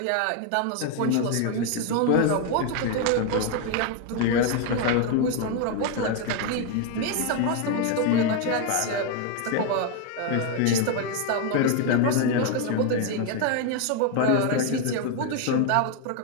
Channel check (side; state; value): both; different; correlation 0.01